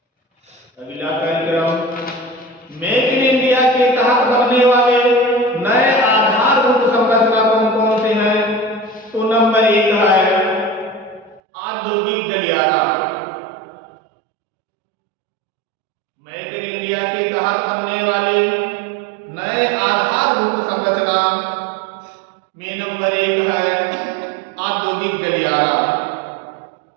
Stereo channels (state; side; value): drops out; left; at 11.4 s